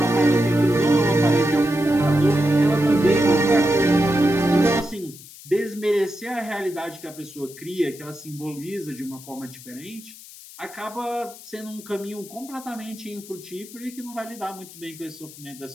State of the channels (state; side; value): noise; left; hiss, 18 dB below the sound